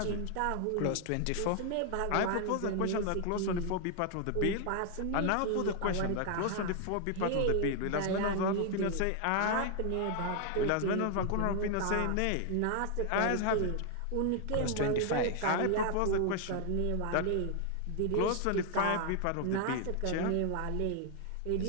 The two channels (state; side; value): different; both; correlation 0.00